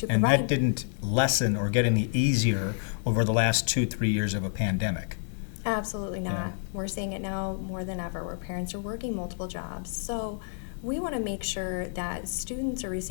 and provide, that didn't lessen or get any easier over the last 2-3 years of a pandemic. Absolutely not. Yeah. We're seeing it now more than ever where parents are working multiple jobs. So we want to make sure that students are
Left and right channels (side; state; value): right; silent; digital silence